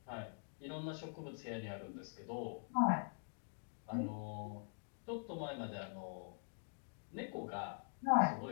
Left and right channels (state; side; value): silent; right; digital silence